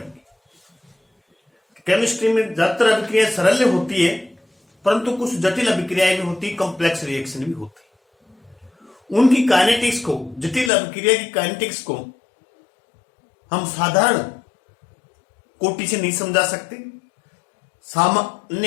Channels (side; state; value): right; drops out; at 10.7 s